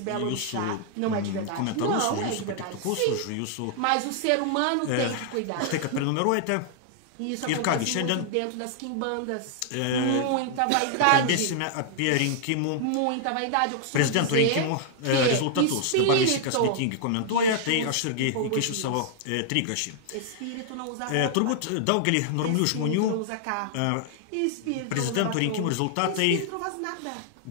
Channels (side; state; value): both; different; correlation -0.01